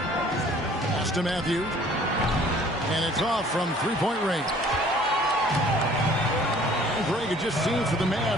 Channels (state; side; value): normal; both; correlation 0.54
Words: Pass to Matthews. And it's off from three-point range. And Greg had just seen for the